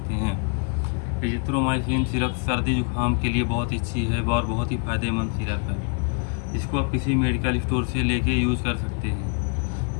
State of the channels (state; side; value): quieter; right; 36.3 dB